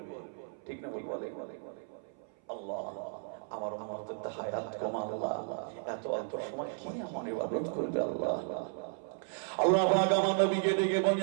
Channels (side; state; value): left; silent; 55 dB below the other